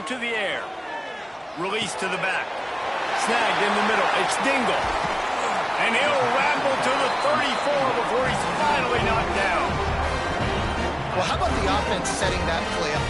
to the air. Release to the back. Snagged in the middle. It's Dingle. And he'll ramble to the 34 before he's finally knocked down. Well, how about the offense setting that play up?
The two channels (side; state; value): both; identical; correlation 1.00